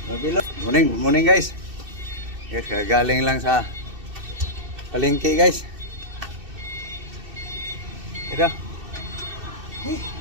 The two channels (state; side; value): late; left; 2.6 ms